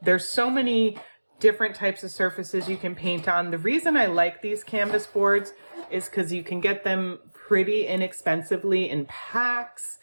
There's so many different types of surfaces you can paint on. The reason I like these canvas boards is because you can get them pretty inexpensively in packs,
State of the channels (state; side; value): inverted; both; correlation -1.00